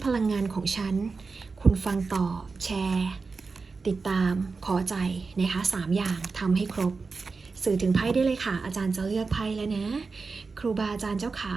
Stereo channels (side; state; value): left; quieter; 4.4 dB